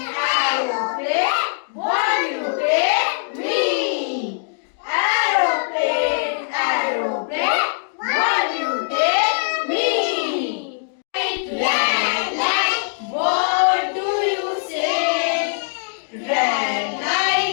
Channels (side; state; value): right; silent; digital silence